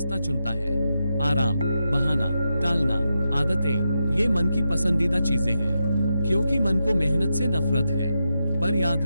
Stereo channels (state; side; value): inverted; both; correlation -0.86